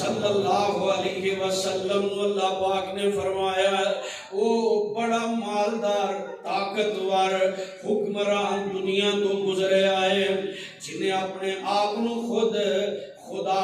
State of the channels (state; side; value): identical; both; correlation 1.00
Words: اللہ علیہ وسلم اللہ پاک نے فرمایا او بڑا مالدار طاقتور حکمران دنیا تو گزرے آئے جنہیں اپنے آپ نو خود